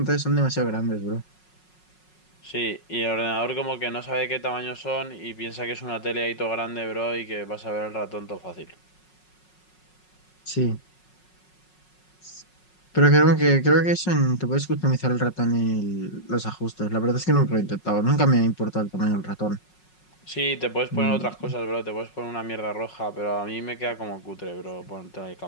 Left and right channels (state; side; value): late; right; 5.5 ms